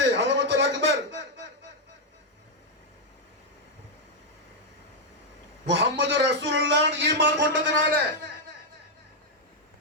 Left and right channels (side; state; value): both; normal; correlation -0.01